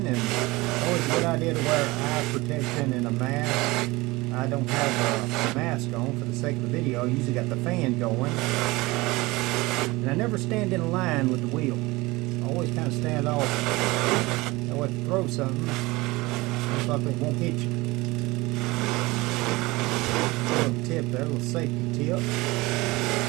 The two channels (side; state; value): left; quieter; 21.9 dB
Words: and always a good idea to wear eye protection and a mask. I don't have a mask on for the sake of the video. I usually got the fan going. And I never stand in a line with the wheel. I always kind of stand off. That way if you throw something, most likely it won't hit you. A little tip there, a little safety tip.